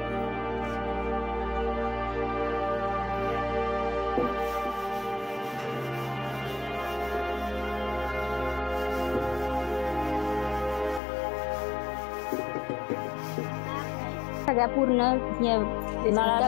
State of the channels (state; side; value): drops out; right; at 11.0 s